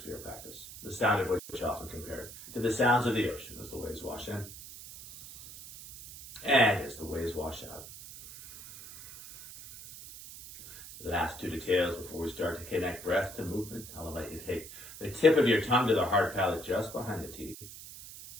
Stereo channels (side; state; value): right; noise; hiss, 14 dB below the sound